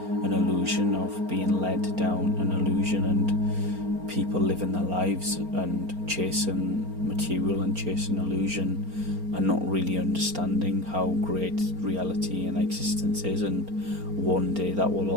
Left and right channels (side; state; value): left; late; 4.3 ms